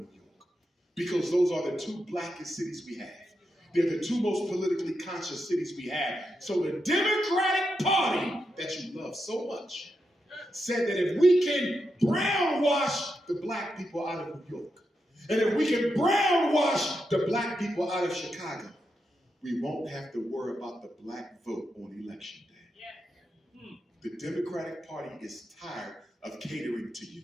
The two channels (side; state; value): both; normal; correlation 0.85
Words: York? Because those are the two blackest cities we have. They're the two most politically conscious cities we have. So the Democratic Party that you love so much said that if we can brownwash the black people out of New York, and if we can brownwash the black people out of Chicago, we won't have to worry about the black vote on election day. The Democratic Party is tired of catering to you.